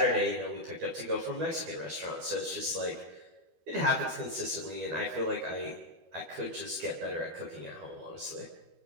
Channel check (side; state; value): left; late; 13 ms